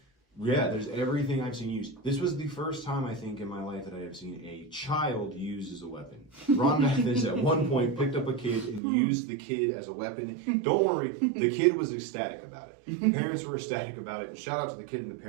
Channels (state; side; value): drops out; left; at 8.8 s